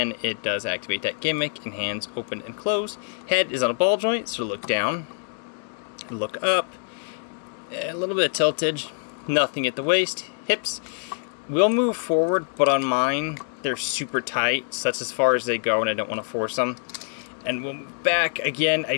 it does activate that gimmick, and hands open and close. Head is on a ball joint, so look down, look up, a little bit of tiltage, nothing at the waist. Hips will move forward, but on mine, they're super tight, so that's as far as they go, and I don't want to force them. And we'll move back, again, I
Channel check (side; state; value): right; silent; digital silence